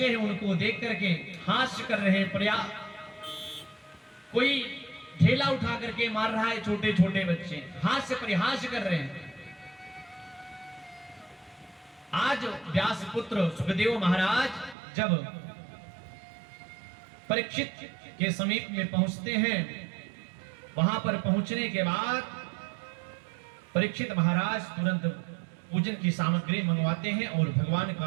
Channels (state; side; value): drops out; left; at 14.8 s